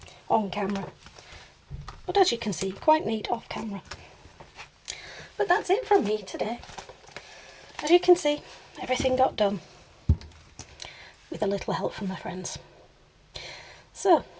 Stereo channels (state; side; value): identical; both; correlation 1.00